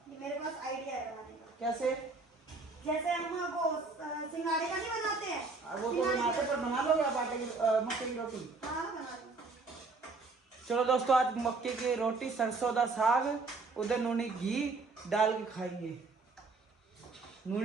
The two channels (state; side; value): quieter; left; 3.8 dB